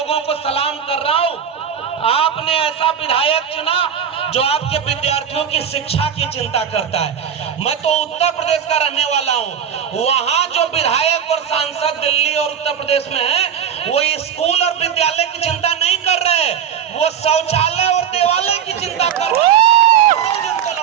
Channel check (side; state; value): left; quieter; 8.3 dB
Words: को सलाम कर रहा हूं आपने ऐसा विधायक चुना जो आपके विद्यार्थियों की शिक्षा की चिंता करता है। मैं तो उत्तर प्रदेश का रहने वाला हूं, वहां जो विधायक और सांसद दिल्ली और उत्तर प्रदेश में है वो स्कूल और विद्यालय की चिंता नहीं कर रहे, वो शौचालय और देवालय की चिंता कर रहे हैं, रोज उनको